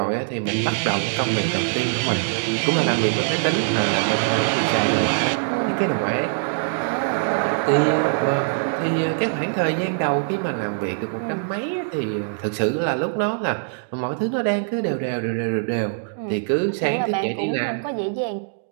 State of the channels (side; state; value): left; silent; digital silence